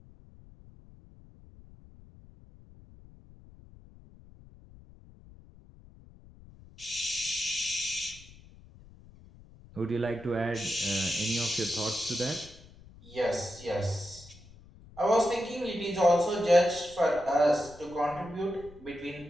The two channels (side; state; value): left; noise; rumble, 22 dB below the sound